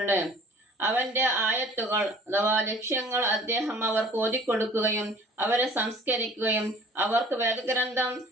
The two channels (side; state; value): both; normal; correlation 0.50